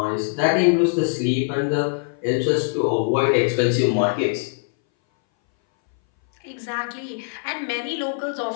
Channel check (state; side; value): silent; right; 61 dB below the other